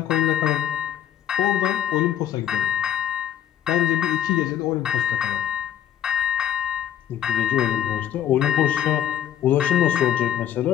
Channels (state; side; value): quieter; right; 10.4 dB